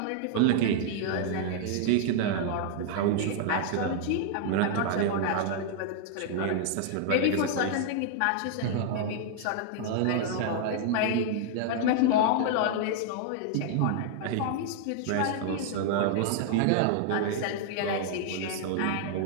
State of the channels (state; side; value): different; both; correlation -0.01